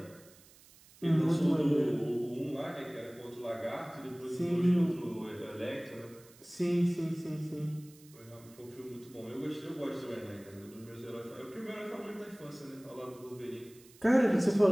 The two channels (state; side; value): noise; right; hiss, 24 dB below the sound